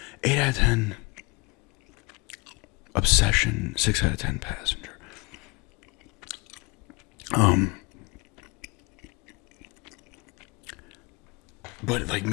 8 out of 10 Obsession. 6 out of 10 Passenger. But like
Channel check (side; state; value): right; quieter; 26.5 dB